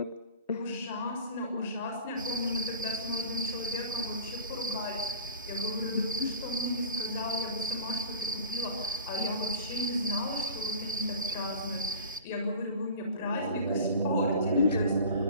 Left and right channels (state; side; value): inverted; both; correlation -0.41